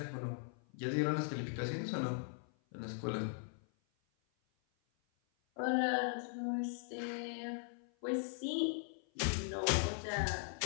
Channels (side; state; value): right; silent; 51 dB below the other